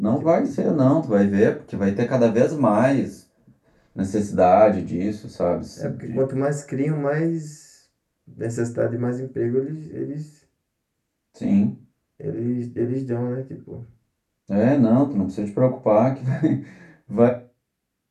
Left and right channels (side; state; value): both; identical; correlation 1.00